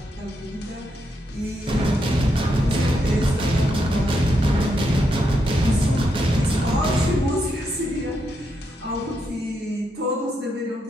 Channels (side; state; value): both; normal; correlation 0.81